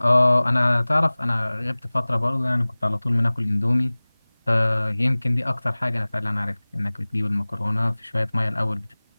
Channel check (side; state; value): both; inverted; correlation -1.00